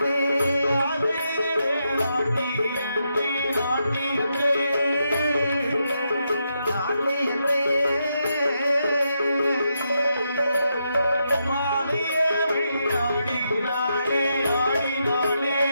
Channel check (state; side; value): inverted; both; correlation -0.82